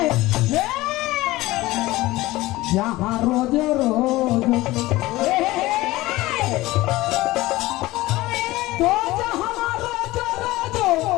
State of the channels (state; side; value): quieter; right; 18.6 dB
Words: जहाँ रोज रोज तो जहाँ रोज रोज